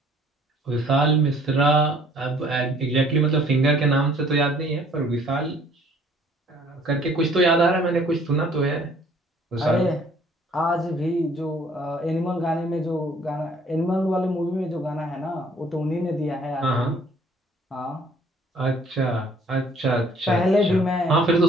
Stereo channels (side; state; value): both; normal; correlation 0.58